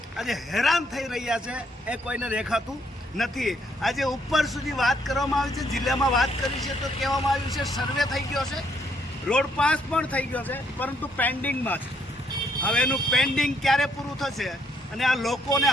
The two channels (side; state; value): both; normal; correlation 0.70